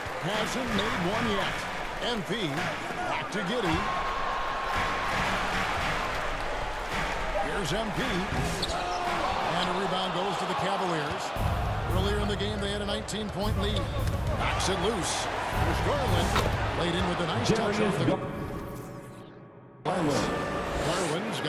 Hasn't made one yet. MP back to Giddey. Here's MP. And a rebound goes to the Cavaliers. Earlier in the game, they had a 19-point lead. Knocks it loose. Here's Garland. Laid in with a nice touch off the Garland's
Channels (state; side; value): identical; both; correlation 1.00